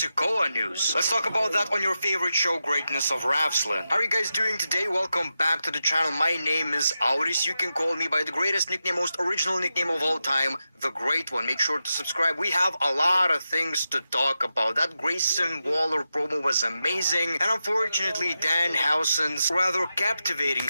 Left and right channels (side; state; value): both; inverted; correlation -0.89